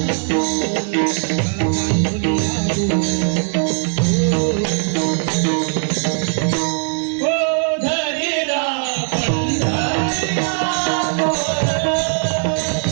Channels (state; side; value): silent; left; 56 dB below the other